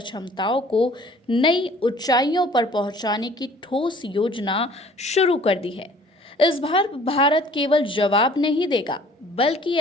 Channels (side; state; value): both; normal; correlation 0.53